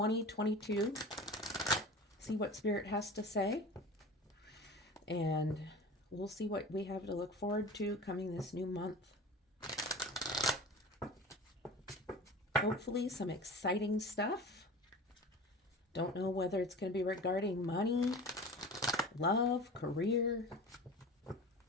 See what Spirit has to say. And we'll see what we have to look forward to coming this new month. Hopefully some exciting stuff. Don't know whether it's going to be regarding money, love, career.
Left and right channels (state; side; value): normal; both; correlation 0.36